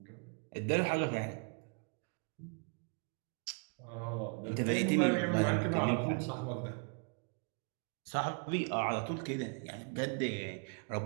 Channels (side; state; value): left; quieter; 39.3 dB